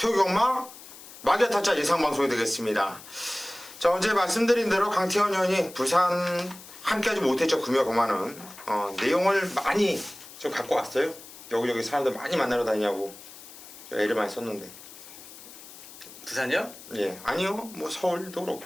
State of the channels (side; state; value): left; noise; hiss, 17 dB below the sound